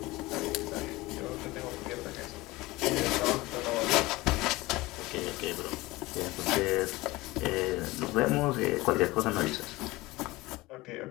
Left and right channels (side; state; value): right; quieter; 20.5 dB